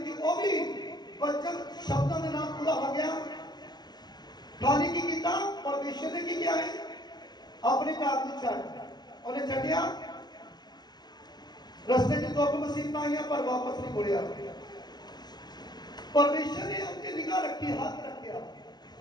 कि वो भी वचन शब्दों के नाल पूरा हो गया। खाली की किया परमेश्वर ने की किया है अपने घर को छड्ड उन्हें छड्डिया। रस्ते च दुख मुसीबतां आईयां पर वापस नहीं मुड़िया। परमेश्वर ने उसकी निगाह रखी, हाथ रखा,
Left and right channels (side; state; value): right; late; 0.20 ms